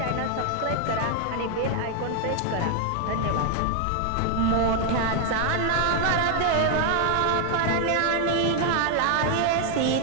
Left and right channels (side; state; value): both; different; correlation 0.00